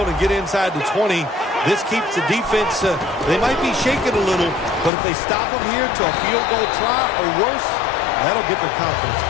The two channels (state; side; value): drops out; right; at 4.9 s